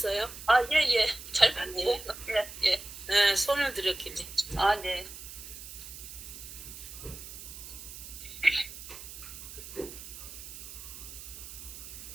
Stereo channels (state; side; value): noise; right; hiss, 12 dB below the sound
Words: 아, 예, 예. 잘 네. 봤네. 예, 예. 네, 손을 들었길래. 아, 네.